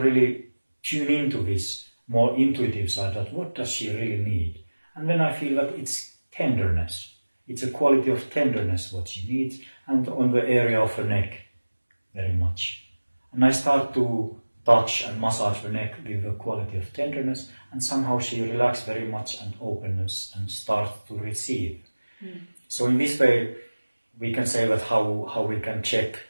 tune into this more intuitive side, that what does she really need? And then I feel that it's tenderness. It's a quality of tenderness what she needs, and on the area of her neck, very much. And I start to touch and massage the neck with the quality of tenderness, and somehow she relaxes very much and openness and starts to receive. So in this way, we can say that how we can check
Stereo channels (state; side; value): inverted; both; correlation -1.00